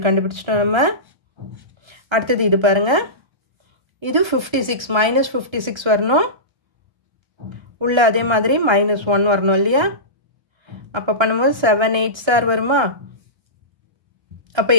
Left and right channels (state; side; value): late; left; 1.3 ms